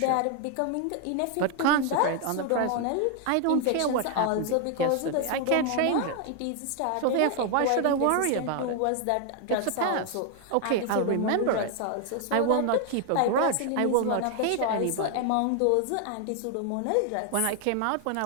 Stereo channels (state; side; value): different; both; correlation 0.00